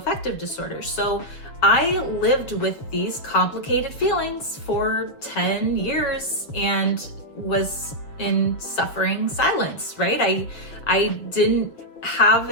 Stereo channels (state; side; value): late; right; 6.9 ms